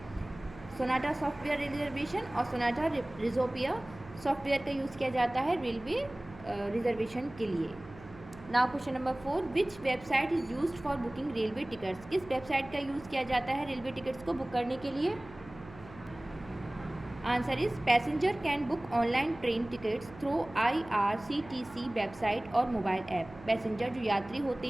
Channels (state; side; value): noise; right; hum, 18 dB below the sound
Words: Sonata software rail reservation और Sonata रिजोपिया software का यूज़ किया जाता है रेलवे रिजर्वेशन के लिए। Now question number 4, which website is used for booking railway tickets? किस website का use किया जाता है रेलवे टिकट्स को बुक करने के लिए? Answer is passenger can book online train tickets through IRCTC website और मोबाइल ऐप। पैसेंजर, जो यात्री होते